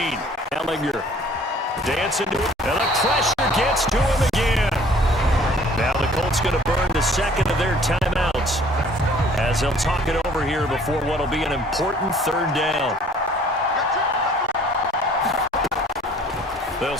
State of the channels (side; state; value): both; normal; correlation 0.55